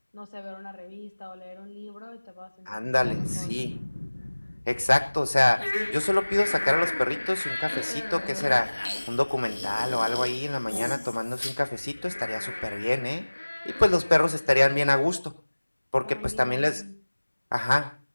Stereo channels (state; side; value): inverted; both; correlation -1.00